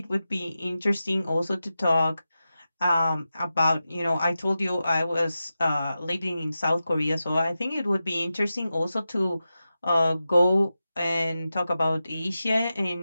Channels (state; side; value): inverted; both; correlation -0.92